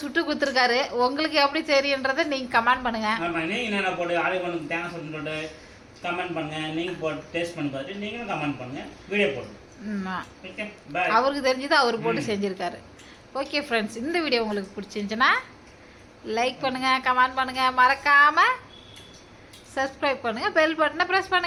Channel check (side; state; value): both; identical; correlation 1.00